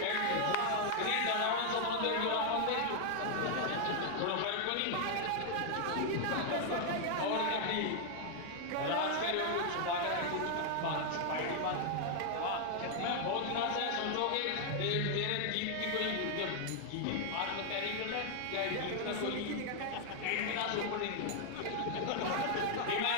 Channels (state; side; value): different; both; correlation 0.00